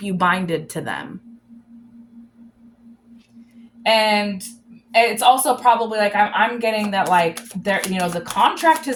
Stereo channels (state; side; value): identical; both; correlation 1.00